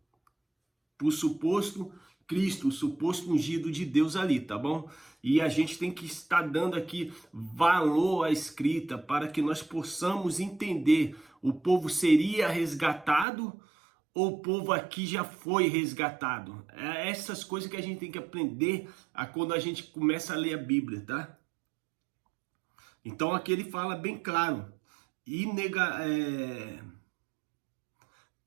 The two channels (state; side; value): drops out; left; at 13.2 s